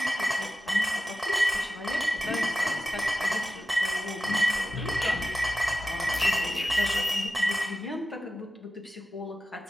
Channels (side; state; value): both; normal; correlation 0.93